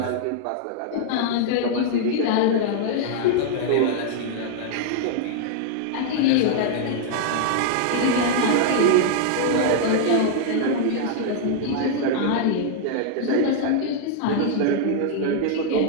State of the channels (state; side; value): different; both; correlation -0.01